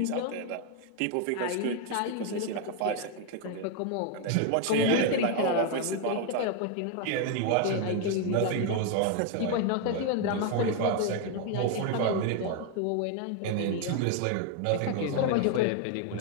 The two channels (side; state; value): both; different; correlation 0.01